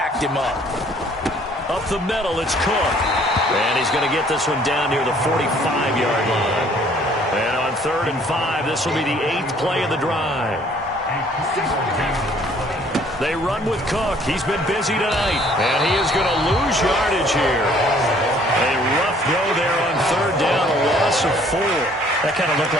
him up. Up the middle, it's Cook. And he's going to get this one down near the 45-yard line. And on 3rd and 5, this will be the 8th play of the drive. They run with Cook. He's been busy tonight. And he is going to lose yardage here. A rough go there on 3rd down, a loss of 4. That kind of looked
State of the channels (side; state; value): both; normal; correlation 0.59